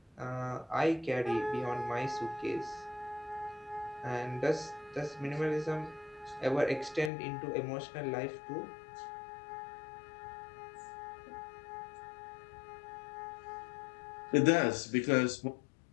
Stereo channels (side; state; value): right; drops out; at 7.1 s